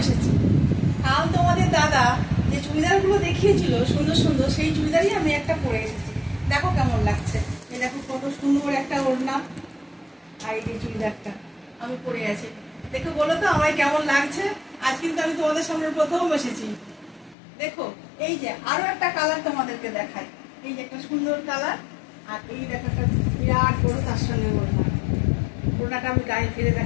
এসেছি। কাল তোমাদের দাদা যে চুড়িদারগুলো দেখিয়েছিল সুন্দর সুন্দর, সেই চুড়িদারই আমি একটা পরে এসেছি। দেখো কেমন লাগছে। এই দেখো কত সুন্দর একটা ওড়না, আর এই চুড়িদারটা আমি পরে আছি। দেখো বলো তো আমায় কেমন লাগছে। আজ কিন্তু আমি তোমাদের সামনে প্রথম এসেছি। দেখো এই যে আরো একটা কালার তোমাদেরকে দেখাই। এই যে একটা সুন্দর কালার, আর এই দেখো একটা বিরাট বড় তার সঙ্গে ওড়না। ওড়নাটা আমি গায়ে ফিরে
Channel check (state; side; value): drops out; right; at 17.4 s